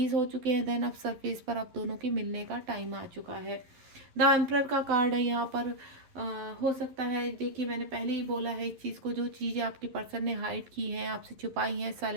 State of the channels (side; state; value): left; late; 11 ms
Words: हो चुके हैं। देन अब सरफेस पर आप दोनों के मिलने का टाइम आ चुका है। द एम्परर का कार्ड है यहाँ पर। हो सकता है, देखिए मैंने पहले ही बोला है इस चीज़ को, जो चीज़ें आपके पर्सन ने हाइड की हैं, आपसे छुपाई हैं,